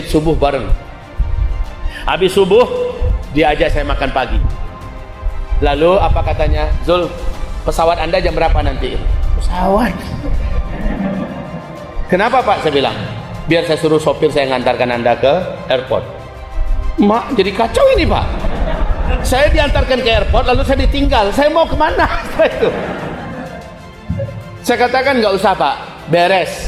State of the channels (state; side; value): identical; both; correlation 1.00